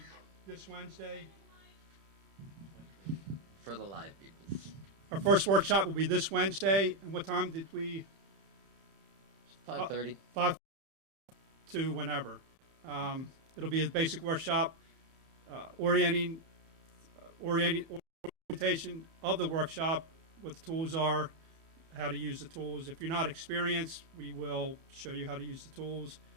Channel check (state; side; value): late; left; 31 ms